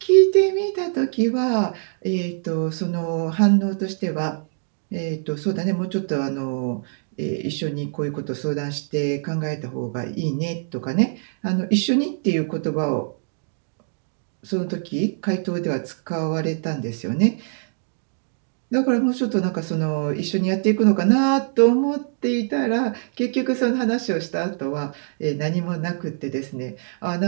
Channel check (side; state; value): left; silent; digital silence